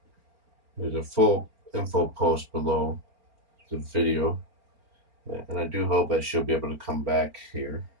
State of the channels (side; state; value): left; late; 4.4 ms